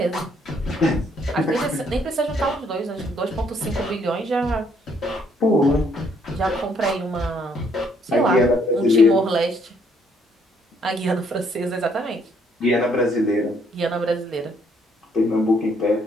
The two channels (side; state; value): both; normal; correlation 0.68